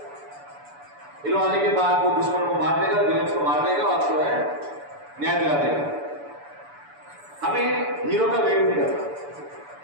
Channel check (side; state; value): left; late; 6.9 ms